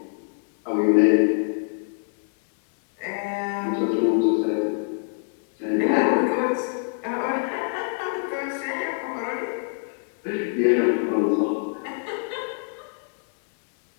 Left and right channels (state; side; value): silent; right; 61 dB below the other